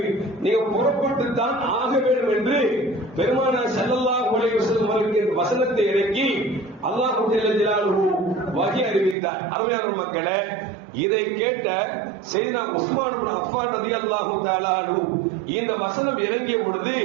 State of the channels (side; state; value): left; drops out; at 9.2 s